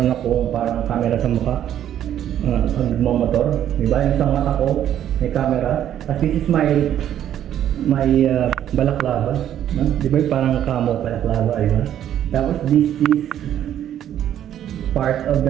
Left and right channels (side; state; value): left; quieter; 10.8 dB